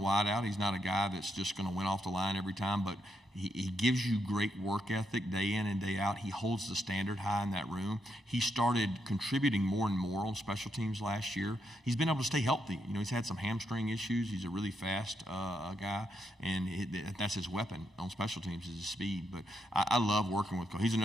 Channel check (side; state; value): both; normal; correlation 0.80